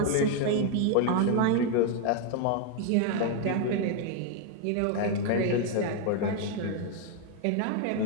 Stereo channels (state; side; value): different; both; correlation 0.01